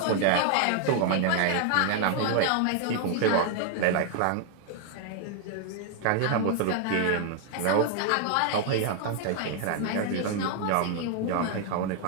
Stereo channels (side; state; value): both; different; correlation 0.00